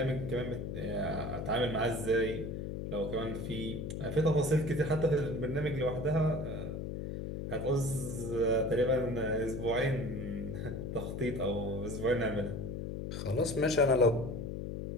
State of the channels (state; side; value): noise; left; hum, 5 dB below the sound